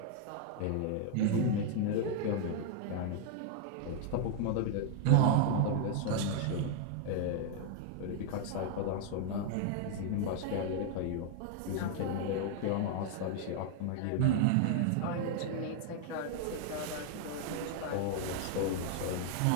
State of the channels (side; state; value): both; different; correlation 0.00